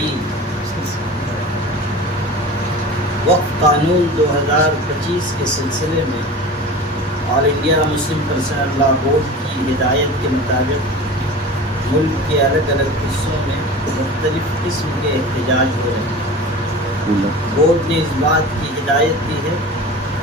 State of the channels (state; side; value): normal; both; correlation 0.35